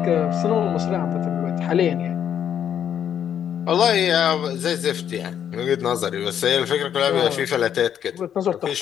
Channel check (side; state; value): right; quieter; 9.2 dB